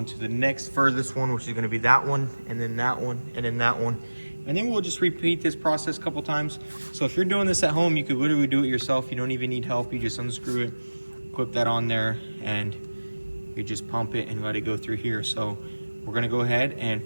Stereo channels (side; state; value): both; inverted; correlation -1.00